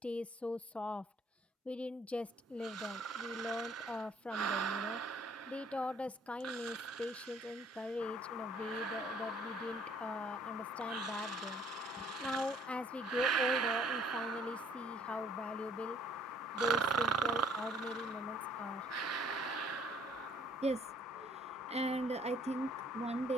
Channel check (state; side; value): normal; both; correlation 0.61